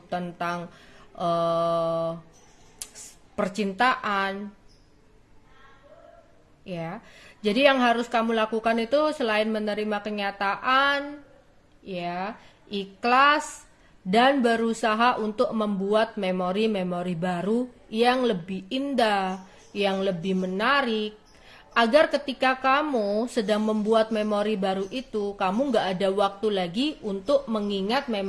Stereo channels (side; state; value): both; identical; correlation 1.00